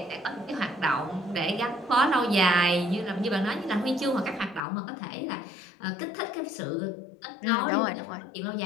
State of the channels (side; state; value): right; drops out; at 4.6 s